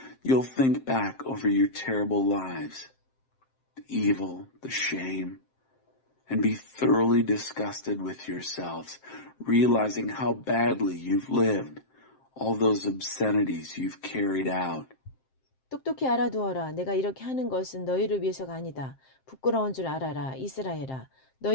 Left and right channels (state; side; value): late; right; 7.6 ms